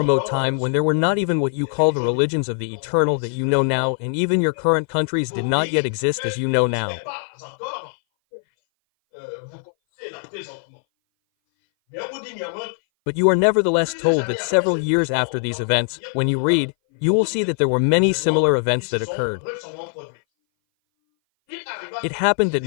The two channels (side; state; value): right; silent; 59 dB below the other